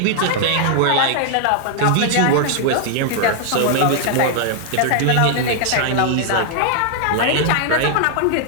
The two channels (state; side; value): different; both; correlation 0.00